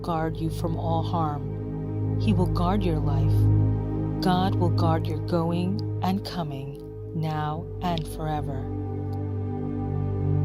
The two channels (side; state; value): both; identical; correlation 1.00